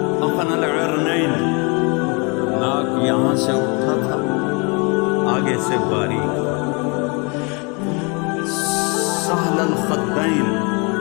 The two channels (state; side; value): quieter; right; 31.6 dB